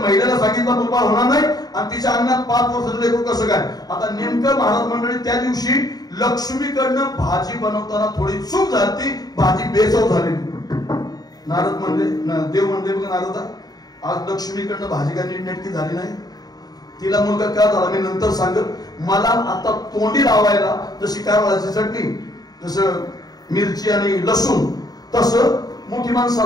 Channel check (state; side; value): late; right; 0.19 ms